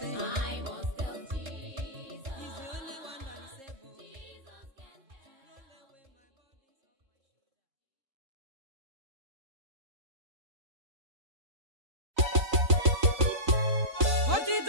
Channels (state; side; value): late; left; 3.8 ms